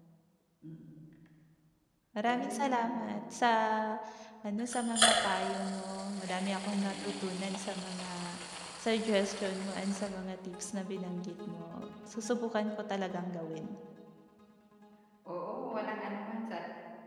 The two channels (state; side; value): identical; both; correlation 1.00